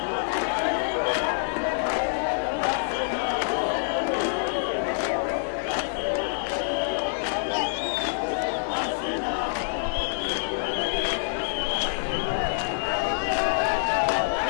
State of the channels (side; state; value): right; silent; 58 dB below the other